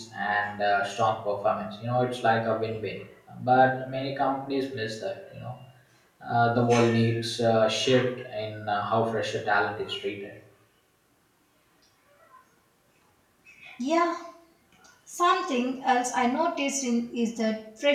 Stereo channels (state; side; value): identical; both; correlation 1.00